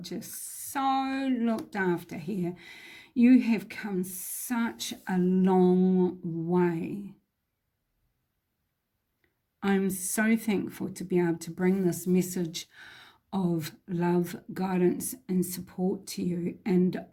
so looked after here. You have come such a long way. I'm so thankful to be able to bring this message of love, guidance, and support to you. And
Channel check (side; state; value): both; identical; correlation 1.00